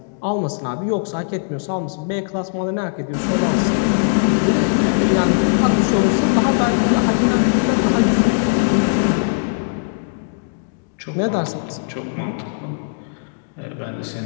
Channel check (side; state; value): right; silent; digital silence